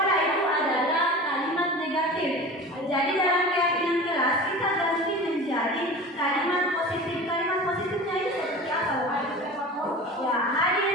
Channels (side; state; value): both; normal; correlation 0.35